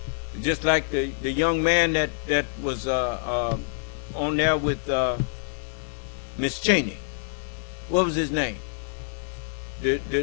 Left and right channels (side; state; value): right; silent; 59 dB below the other